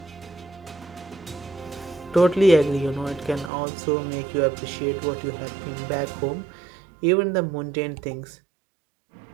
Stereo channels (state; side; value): drops out; left; at 3.5 s